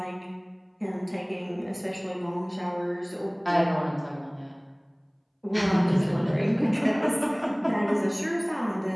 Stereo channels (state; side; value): identical; both; correlation 1.00